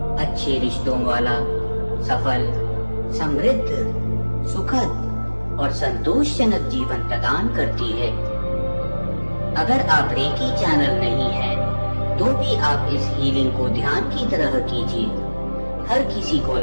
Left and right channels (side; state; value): both; inverted; correlation -1.00